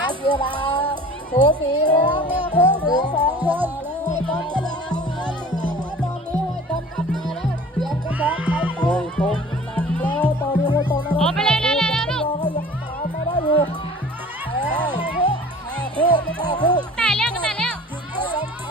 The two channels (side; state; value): both; normal; correlation 0.44